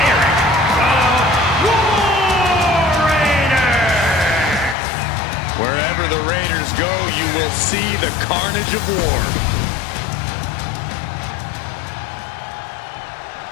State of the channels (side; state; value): right; drops out; at 4.8 s